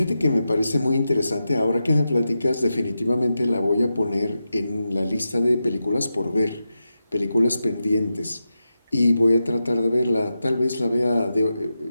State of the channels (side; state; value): both; inverted; correlation -0.90